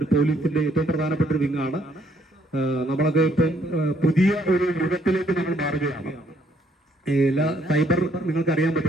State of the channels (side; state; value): both; normal; correlation 0.68